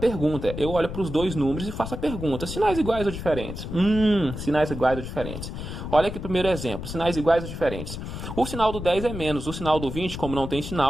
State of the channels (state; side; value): noise; left; rumble, 7 dB below the sound